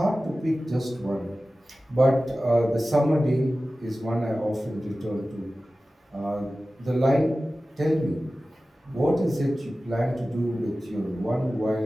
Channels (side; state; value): both; normal; correlation 0.96